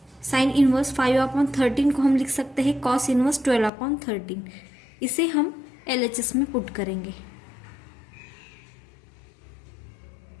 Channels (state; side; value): drops out; right; at 3.7 s